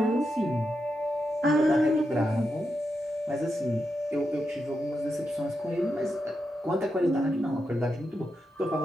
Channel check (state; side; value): normal; both; correlation 0.86